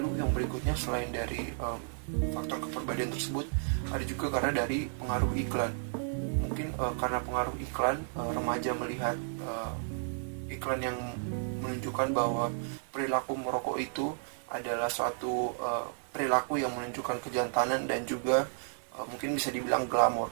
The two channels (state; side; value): silent; left; digital silence